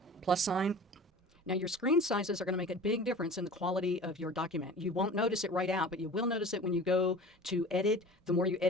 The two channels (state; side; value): normal; both; correlation 0.39